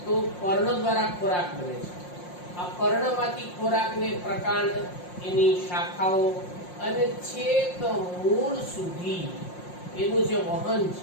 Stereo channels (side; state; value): right; late; 5.6 ms